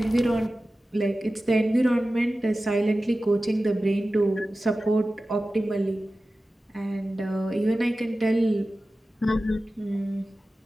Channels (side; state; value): both; normal; correlation 0.95